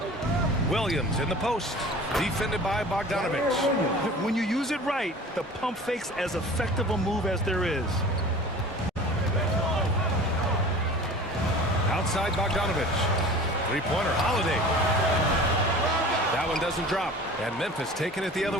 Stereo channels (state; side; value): normal; both; correlation 0.41